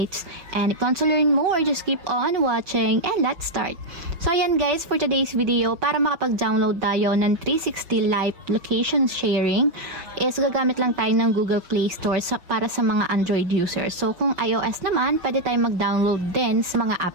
And if you want to learn more, just keep on watching and let's start. So ayan guys, for today's video, para makapag-download tayo ng 360 live location sharing, is gagamit lang tayo ng Google Play Store para sa mga Android users. So kung iOS naman, pwede tayong mag-download din sa mga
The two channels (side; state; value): left; late; 6.1 ms